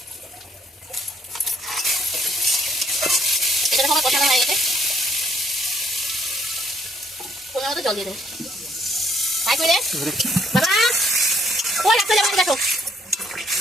এটা আমার কষানো হয়ে গেছে। কোনো মতো জল দিয়ে দেবো। তাই করে বাবা ওই রাখতে যাবো, দেখো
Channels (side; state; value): both; normal; correlation 0.67